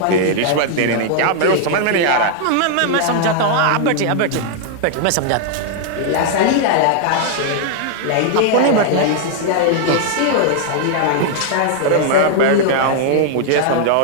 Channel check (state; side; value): different; both; correlation -0.01